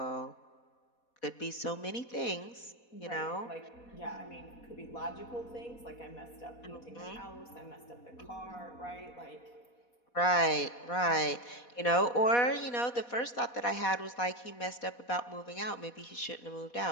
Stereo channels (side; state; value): right; late; 4.1 ms